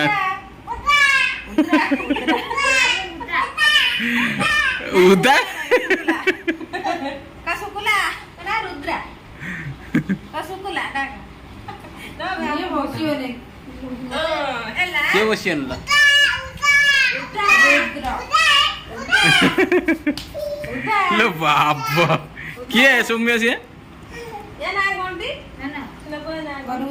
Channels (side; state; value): both; identical; correlation 1.00